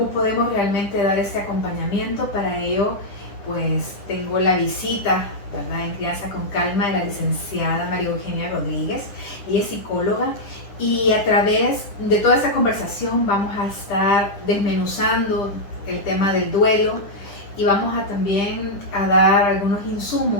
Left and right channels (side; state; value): right; late; 10 ms